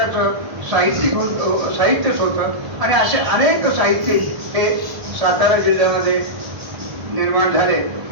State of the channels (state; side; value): late; left; 1.1 ms